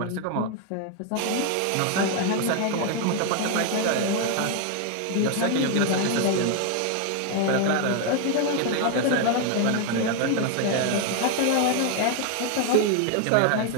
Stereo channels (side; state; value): both; different; correlation 0.01